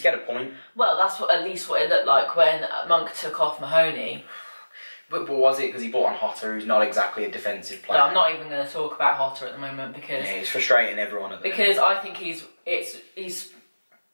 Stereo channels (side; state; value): both; inverted; correlation -1.00